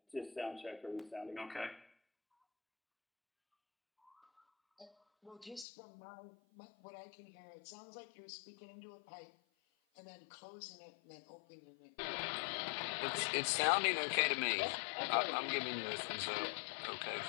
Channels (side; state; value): right; drops out; at 5.7 s